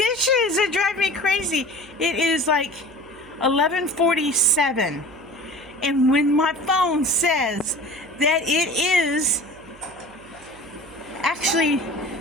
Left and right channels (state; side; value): noise; right; hum, 23 dB below the sound